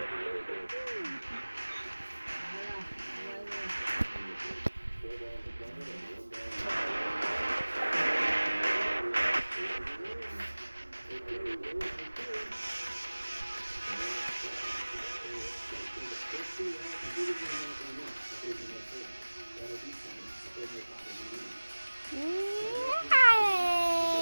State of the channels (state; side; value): inverted; both; correlation -1.00